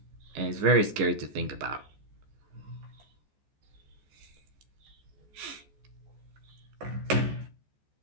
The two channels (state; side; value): late; left; 14 ms